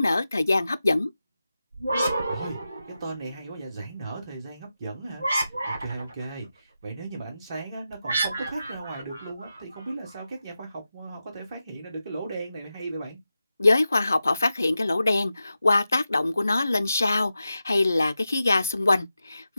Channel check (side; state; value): both; inverted; correlation -0.91